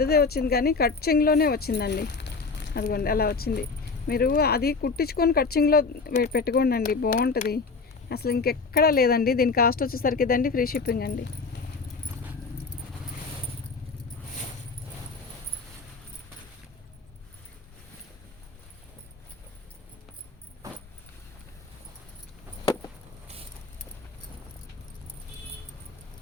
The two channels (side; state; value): right; quieter; 4.4 dB